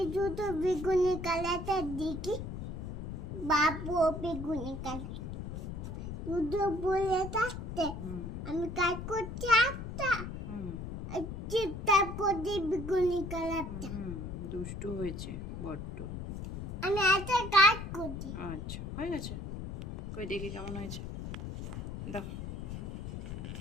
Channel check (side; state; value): left; noise; rumble, 7 dB below the sound